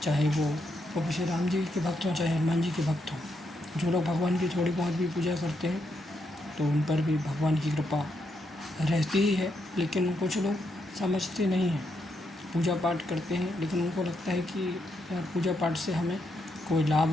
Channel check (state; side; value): normal; both; correlation 0.80